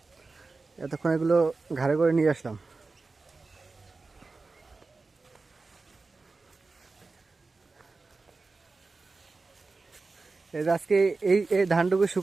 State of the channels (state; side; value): quieter; left; 3.9 dB